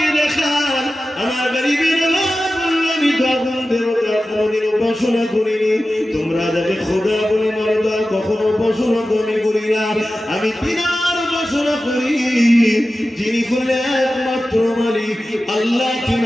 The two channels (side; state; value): both; normal; correlation 0.94